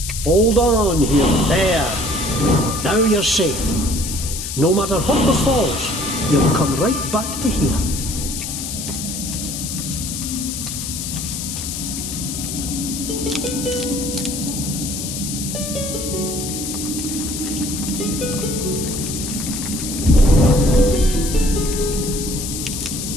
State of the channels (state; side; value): noise; left; hiss, 6 dB below the sound